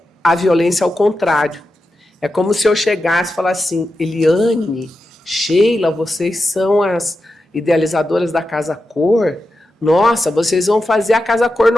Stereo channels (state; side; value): normal; both; correlation 0.89